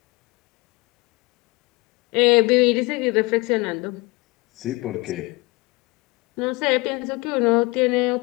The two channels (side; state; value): right; quieter; 24.7 dB